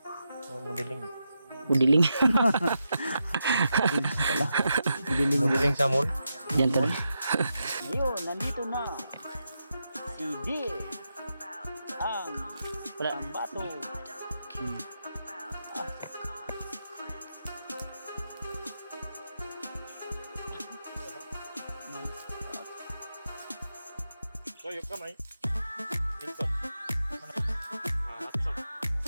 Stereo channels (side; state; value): both; inverted; correlation -0.86